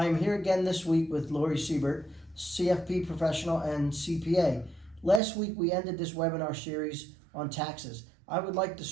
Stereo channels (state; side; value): drops out; left; at 5.2 s